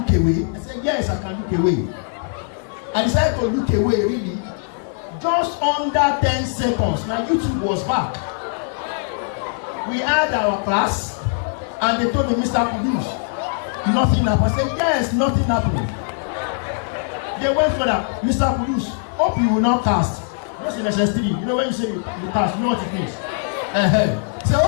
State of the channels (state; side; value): silent; right; 63 dB below the other